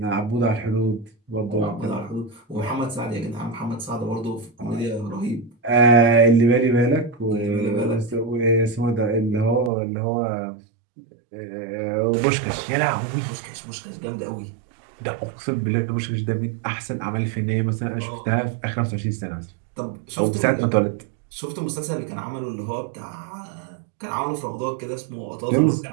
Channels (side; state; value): left; drops out; at 9.7 s